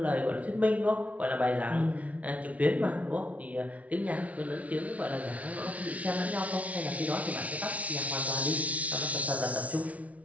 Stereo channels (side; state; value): left; late; 0.067 ms